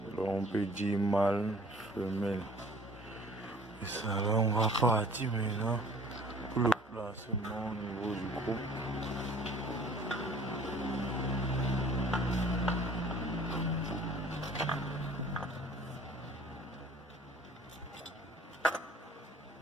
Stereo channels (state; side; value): normal; both; correlation 0.51